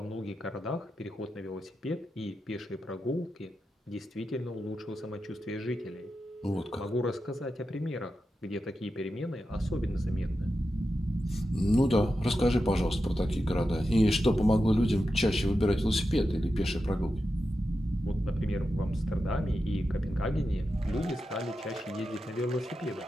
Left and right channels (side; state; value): both; normal; correlation 0.90